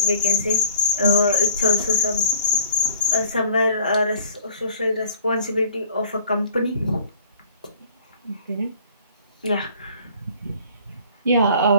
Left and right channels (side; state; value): both; inverted; correlation -0.50